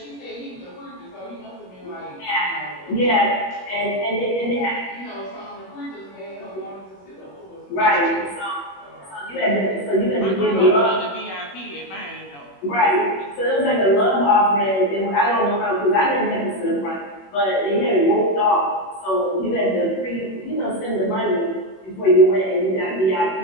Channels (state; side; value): late; right; 21 ms